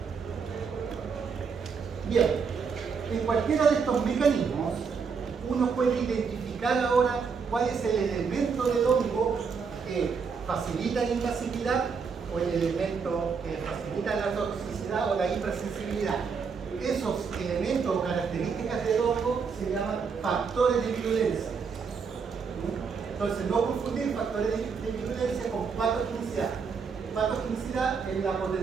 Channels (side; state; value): left; quieter; 5.7 dB